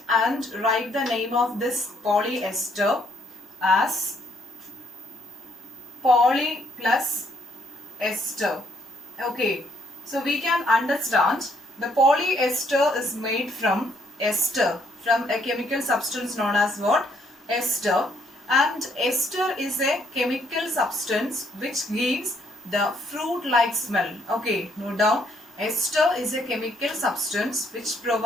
and write the name of this polyester as poly plus ester. Okay, so we can understand the polyester is made from ester, from a chemical substance known as what? Ester. And ester is a chemical substance which gives the fruit-like smell. Okay, note down. Ester is a chemical substance which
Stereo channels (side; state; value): both; normal; correlation 0.69